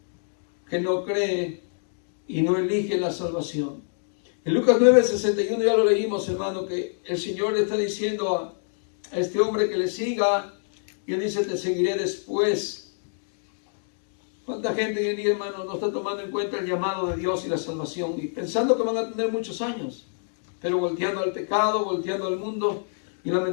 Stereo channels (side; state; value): right; silent; digital silence